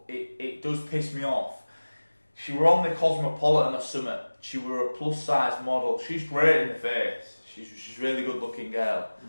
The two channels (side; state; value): both; inverted; correlation -1.00